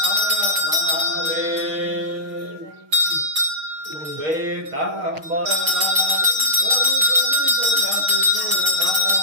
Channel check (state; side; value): late; left; 6.5 ms